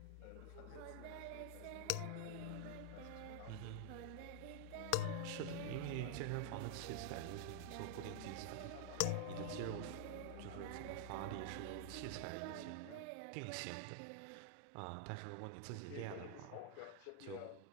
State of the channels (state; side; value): different; both; correlation -0.01